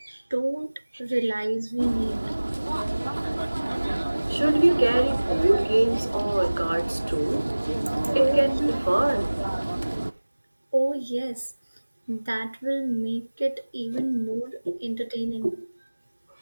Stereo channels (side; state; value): both; inverted; correlation -1.00